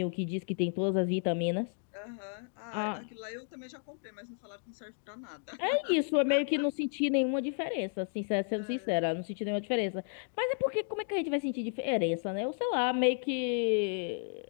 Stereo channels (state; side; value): silent; right; 56 dB below the other